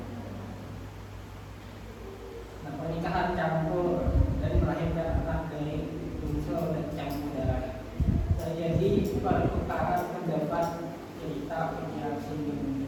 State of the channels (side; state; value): both; identical; correlation 1.00